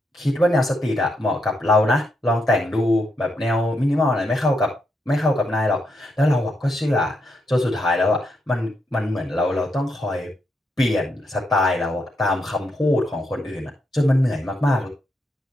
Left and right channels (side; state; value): both; normal; correlation 0.81